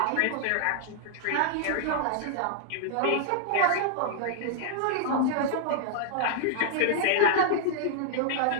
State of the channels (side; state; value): both; different; correlation -0.01